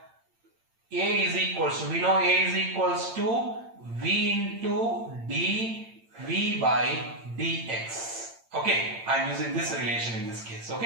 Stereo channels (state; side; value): late; left; 8.8 ms